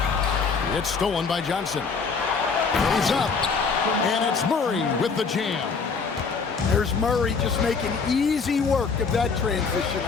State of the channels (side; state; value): right; quieter; 5.1 dB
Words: It's stolen by Johnson. He's up. And it's Murray with the jam. There's Murray just making easy work of that transition